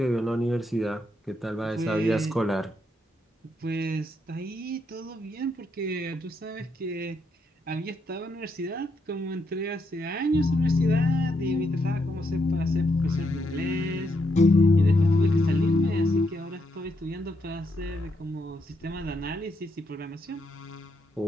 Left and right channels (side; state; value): both; normal; correlation 0.78